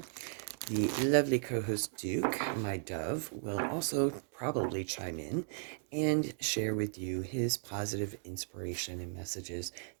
the lovely co-host Duke, my dove, will also probably chime in and share with you his positive inspiration and messages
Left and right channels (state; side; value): silent; left; 54 dB below the other